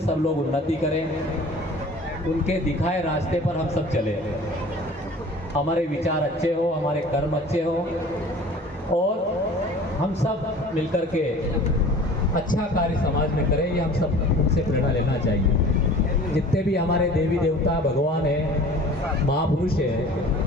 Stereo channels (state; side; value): normal; both; correlation 0.44